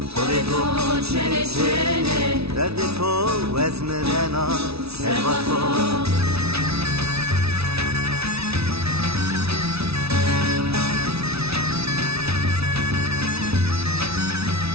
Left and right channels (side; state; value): left; late; 0.78 ms